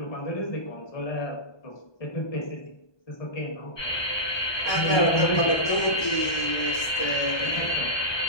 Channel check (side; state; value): right; late; 1.2 ms